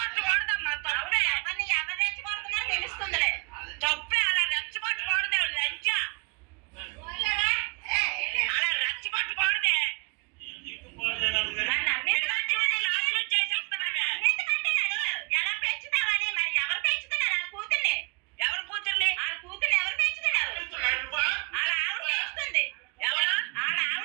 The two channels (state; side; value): quieter; left; 33.8 dB